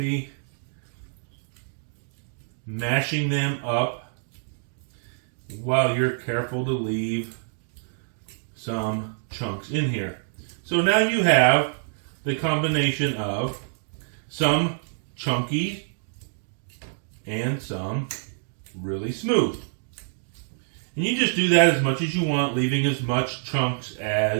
mashing them up while you're careful to leave some chunks in here. So now you have the combination of some chunky and some really smooth. And you just do that as much as you want, leaving as much chunks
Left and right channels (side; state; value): left; silent; digital silence